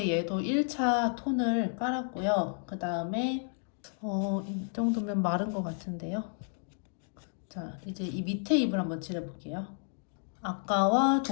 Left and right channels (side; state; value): right; silent; 57 dB below the other